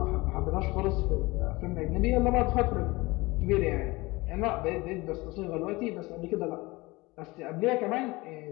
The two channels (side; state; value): right; quieter; 22.3 dB